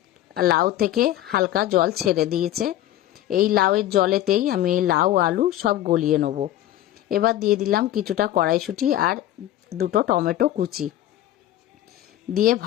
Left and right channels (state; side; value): quieter; right; 13.3 dB